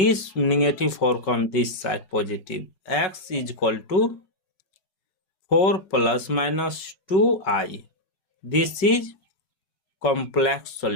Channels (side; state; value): right; late; 5.3 ms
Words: negative 4 comes this side positive, x is equal to 4 plus minus 2i. This is complex